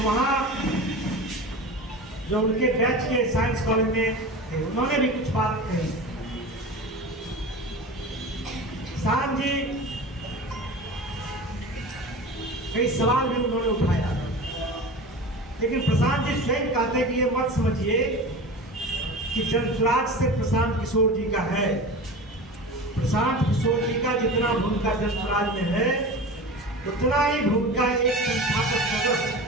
वहाँ जो उनके बैच के साइंस कॉलेज में थे, उन्होंने भी कुछ बात कही। प्रशांत जी कई सवाल भी उन्होंने उठाया, लेकिन प्रशांत जी स्वयं कहते हैं कि ये मत समझिए कि जनसुराज से प्रशांत किशोर जी का है। प्रशांत किशोर जी का जितना भूमिका जनसुराज में है, उतना ही भूमिका एक संस्थापक सदस्य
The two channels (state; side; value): normal; both; correlation 0.32